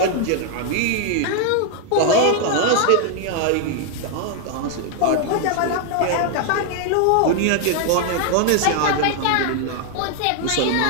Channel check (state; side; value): different; both; correlation 0.00